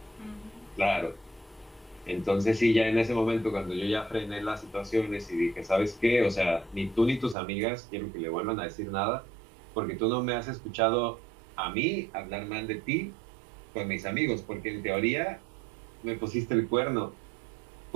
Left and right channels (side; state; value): left; drops out; at 7.4 s